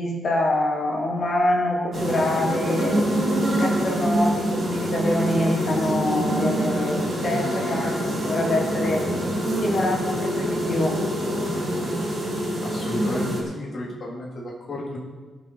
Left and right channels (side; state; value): both; normal; correlation 0.82